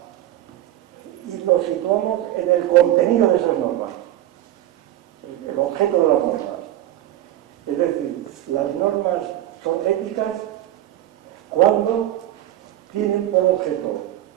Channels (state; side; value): quieter; left; 13.6 dB